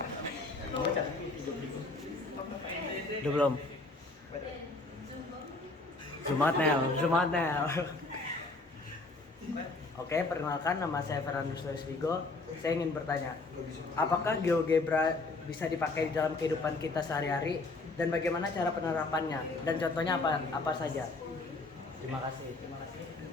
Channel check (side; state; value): right; quieter; 3.3 dB